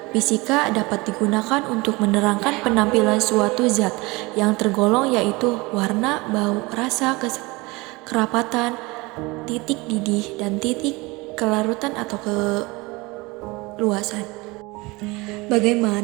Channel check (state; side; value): quieter; left; 23.8 dB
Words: fisika dapat digunakan untuk menerangkan penampilan suatu zat yang tergolong yaitu warna, bau, rasa, kerapatan, titik didih, dan titik kelarutan atau keluasan.